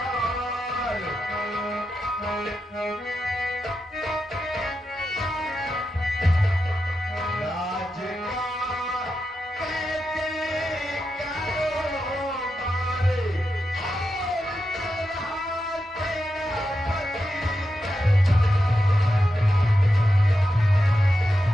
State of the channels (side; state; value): both; normal; correlation 0.88